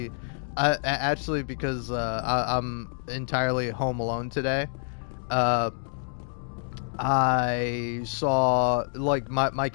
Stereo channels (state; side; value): silent; right; digital silence